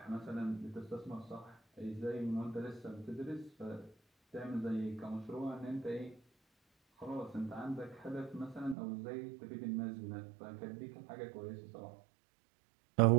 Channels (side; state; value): left; drops out; at 8.8 s